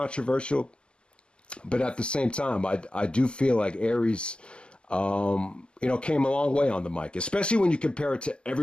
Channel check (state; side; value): late; right; 0.050 ms